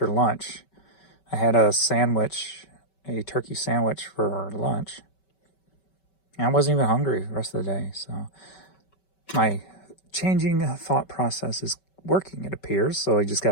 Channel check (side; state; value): right; late; 5.2 ms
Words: lunch. I had a sandwich, a turkey sandwich for lunch. And I wasn't even hungry the rest of the day. So my changing thought process is working, it appears. So I just got